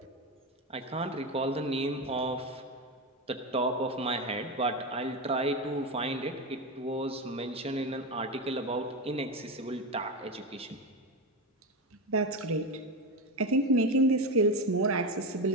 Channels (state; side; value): normal; both; correlation 0.16